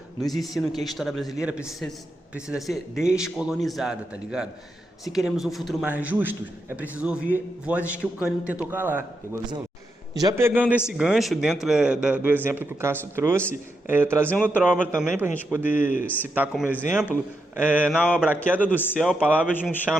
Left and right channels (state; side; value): normal; both; correlation 0.84